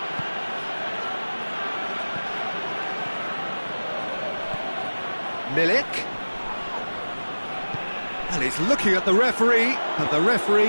Milik. And he's looking at the referee, and the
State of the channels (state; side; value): inverted; both; correlation -1.00